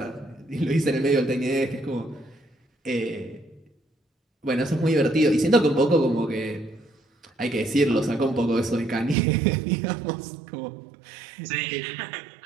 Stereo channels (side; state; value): left; drops out; at 9.2 s